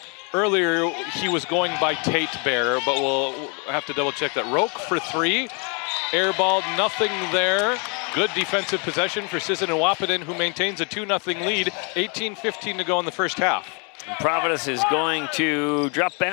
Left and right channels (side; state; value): right; quieter; 35.2 dB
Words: earlier he was going by Tate Bear, but we'll have to double check that. Roque for 3, airballed, nothing there. Good defensive possession for Sisseton Wahpeton, who maintains a 2-0 lead, 18-15 to go in the first half. Providence is going to drop